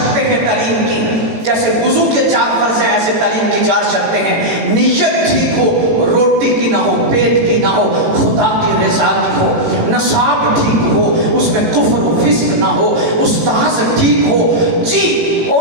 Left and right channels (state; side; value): late; left; 18 ms